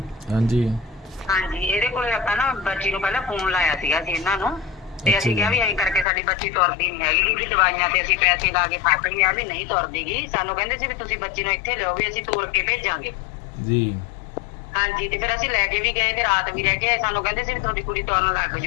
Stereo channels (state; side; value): drops out; right; at 6.1 s